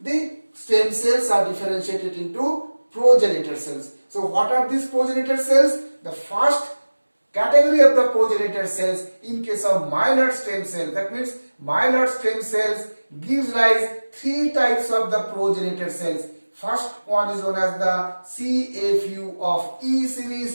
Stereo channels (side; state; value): both; inverted; correlation -1.00